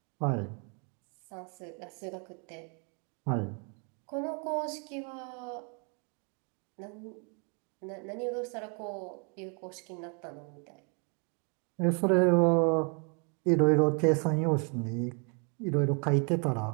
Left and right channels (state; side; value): quieter; left; 36.4 dB